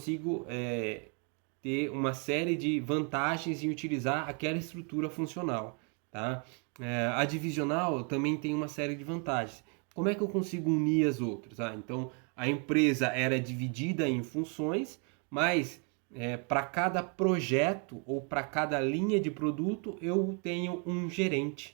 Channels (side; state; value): left; quieter; 37.3 dB